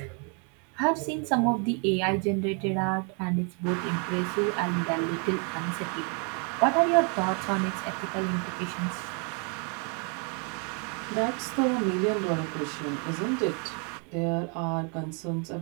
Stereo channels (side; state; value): left; quieter; 37.7 dB